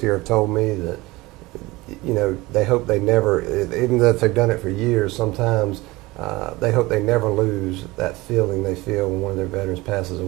have told me that, you know, they hope they never, even though if they've done it for years, sometimes they hope they never lose that feeling they feel when one of their veterans passes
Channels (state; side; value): quieter; left; 21.3 dB